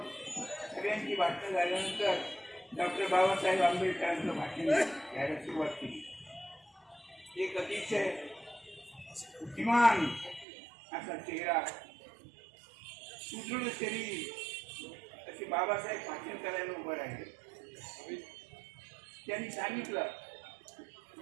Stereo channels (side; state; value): left; drops out; at 10.5 s